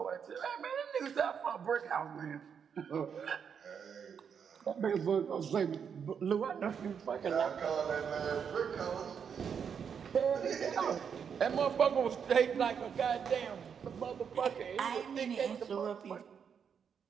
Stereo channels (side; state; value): left; quieter; 7.2 dB